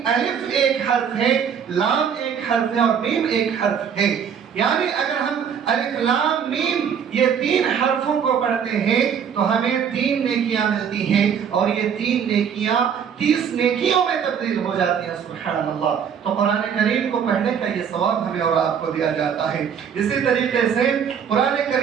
الف ایک حرف ہے، لام ایک حرف ہے اور میم ایک حرف ہے۔ یعنی اگر ہم الف لام میم یہ 3 حرفوں کو پڑھتے ہیں تو ہمیں 3 نیکیاں ملتی ہیں اور یہ 3 نیکیاں 30 نیکیوں میں تبدیل ہو جاتی ہیں۔ سبحان اللہ۔ تو قرآن کریم کو پڑھنے کا یہ ثواب ہمیں اور آپ کو دیا جاتا ہے۔ اسی طریقے سے قرآن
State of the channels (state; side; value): quieter; left; 7.6 dB